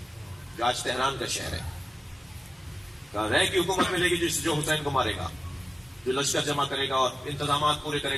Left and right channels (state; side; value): normal; both; correlation 0.96